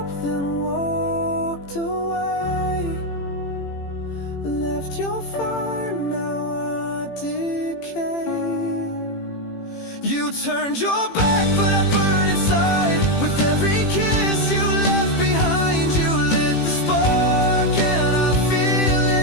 then walked away, left your fire, now I decay. You turned your back, but I burn inside. With every kiss you left behind, you lit the spark, and I feel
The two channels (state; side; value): late; right; 18 ms